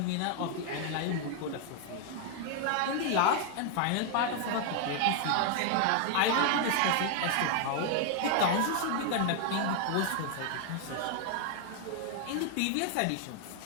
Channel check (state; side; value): different; both; correlation 0.00